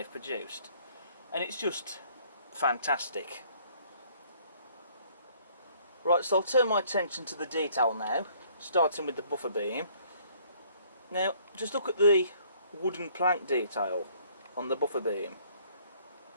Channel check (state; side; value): inverted; both; correlation -0.60